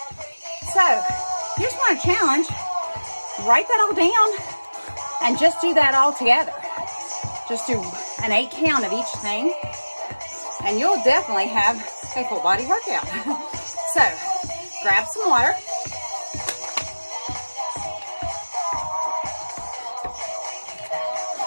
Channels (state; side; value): inverted; both; correlation -1.00